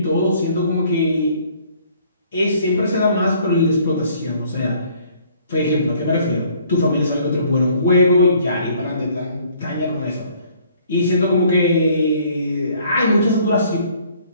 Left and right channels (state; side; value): inverted; both; correlation -0.59